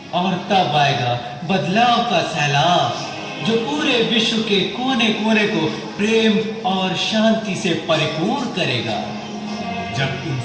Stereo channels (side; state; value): both; identical; correlation 1.00